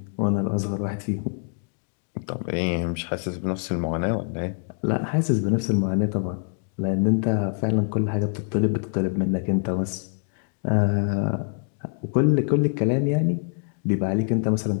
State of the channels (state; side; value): silent; right; 58 dB below the other